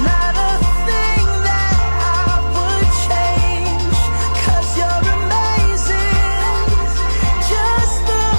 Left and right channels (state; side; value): inverted; both; correlation -1.00